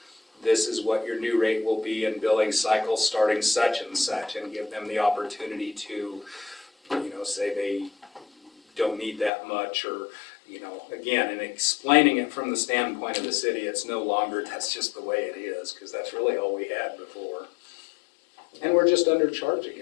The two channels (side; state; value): right; drops out; at 9.3 s